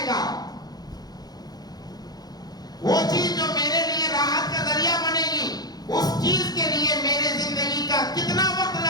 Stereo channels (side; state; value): right; late; 0.19 ms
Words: گا، وہ چیز جو میرے لیے راحت کا ذریعہ بنے گی، اس چیز کے لیے میرے زندگی کا کتنا وقت